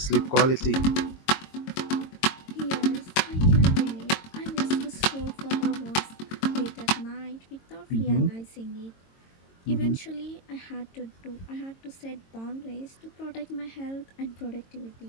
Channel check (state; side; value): late; right; 22 ms